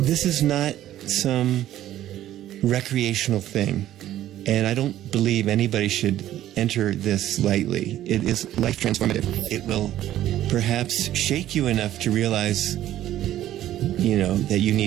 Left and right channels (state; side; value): quieter; left; 12.9 dB